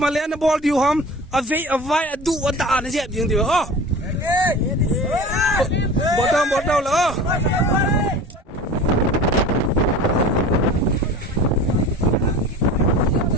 ma le na ball diu ham a vai a du a da na je ding diu oh bot down la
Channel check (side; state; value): both; normal; correlation 0.37